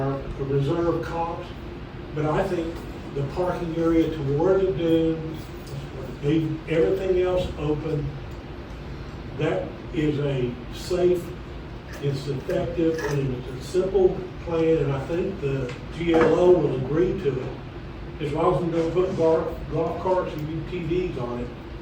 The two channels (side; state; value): both; identical; correlation 1.00